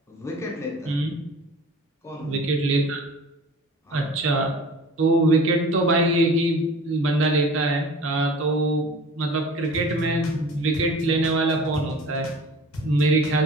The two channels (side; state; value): both; normal; correlation 0.43